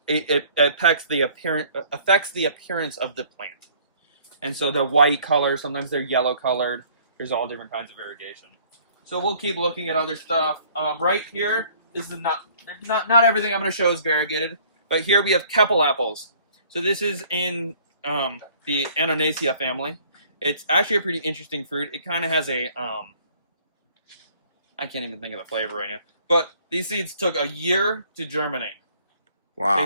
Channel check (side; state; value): both; inverted; correlation -0.57